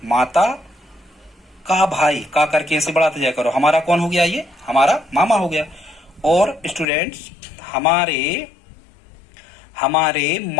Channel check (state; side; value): drops out; right; at 6.9 s